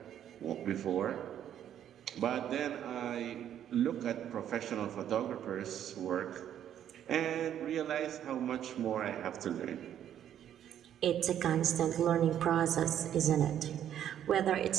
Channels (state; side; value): quieter; left; 10.3 dB